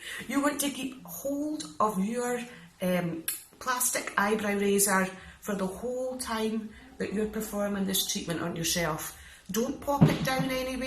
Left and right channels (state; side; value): identical; both; correlation 1.00